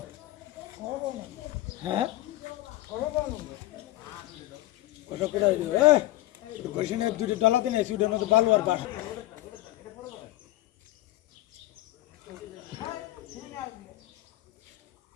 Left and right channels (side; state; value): right; quieter; 17.1 dB